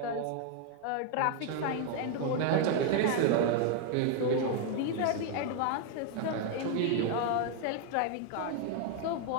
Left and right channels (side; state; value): both; different; correlation 0.01